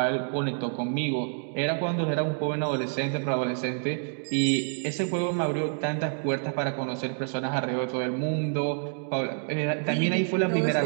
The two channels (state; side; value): silent; left; 60 dB below the other